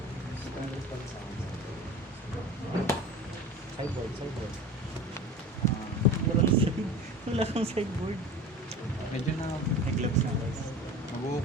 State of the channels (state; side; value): normal; both; correlation 0.35